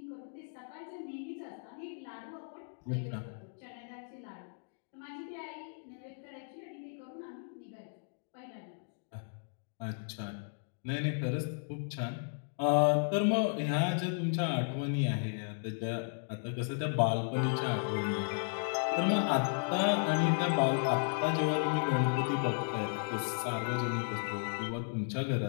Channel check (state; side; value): silent; right; digital silence